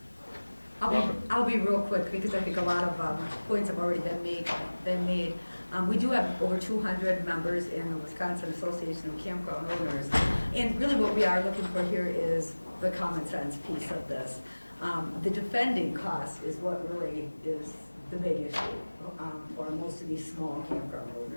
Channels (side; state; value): both; inverted; correlation -1.00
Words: I'll be real quick because I think a lot of points have already been made. We do have over 200 members in the Wisconsin Association of Campground Owners. And really what we are looking for here is the common sense piece of this. The defending cost is what really is the big issue for most of these small campground